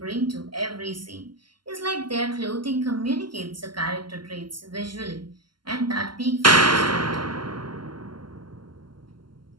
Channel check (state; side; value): late; left; 0.72 ms